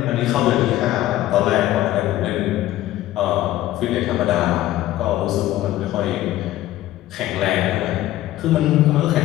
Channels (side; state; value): right; quieter; 14.6 dB